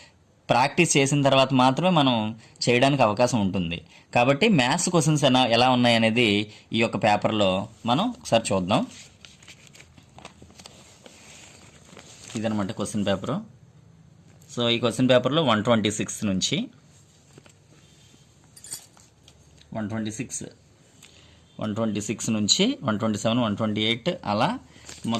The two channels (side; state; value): both; identical; correlation 1.00